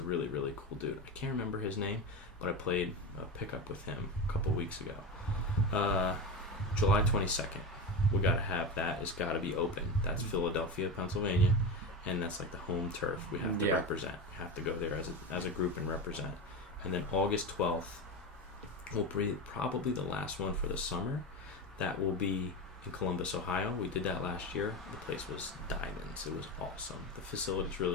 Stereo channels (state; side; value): normal; both; correlation 0.21